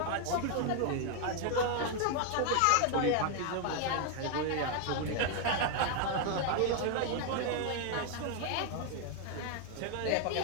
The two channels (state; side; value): different; both; correlation 0.01